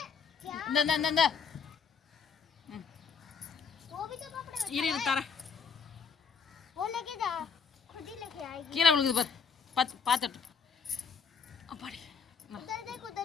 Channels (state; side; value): quieter; right; 6.0 dB